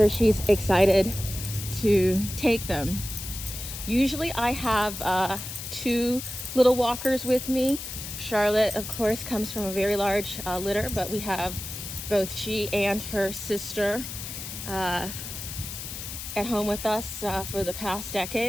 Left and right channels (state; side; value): noise; left; hiss, 8 dB below the sound